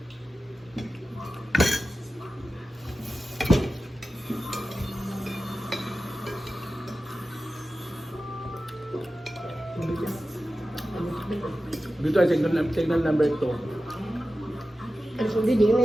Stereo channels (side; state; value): both; normal; correlation 0.94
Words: Dito ay signal number 2. Ang sundi din